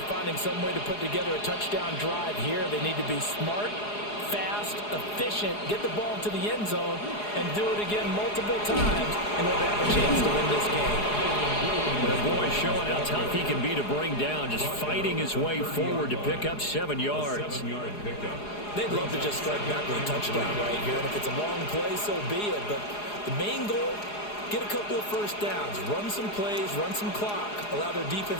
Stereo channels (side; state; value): right; late; 4.8 ms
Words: finding some way to put together a touchdown drive here. They need to be smart, fast, efficient, get the ball to the end zone, and do it again multiple times in order to have a chance to win this game. The boy showing how tough he can be to bring down, just fighting his way forward to pick up 7 yards. They'd love to just strike back with a touchdown right here, and if it's a long play, so be it. But the main goal, get a couple of first downs, run some plays, run some clock, allow their